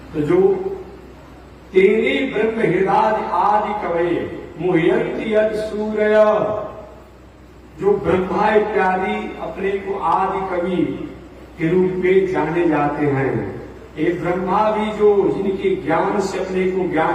तो जो तेरे ब्रह्म हृदय आदि कवि मुह्यंति यद सूर्य, जो ब्रह्मा इत्यादि अपने को आदि कवि के रूप में जाने जाते हैं। ये ब्रह्मा भी जो जिनके ज्ञान से अपने को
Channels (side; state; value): both; identical; correlation 1.00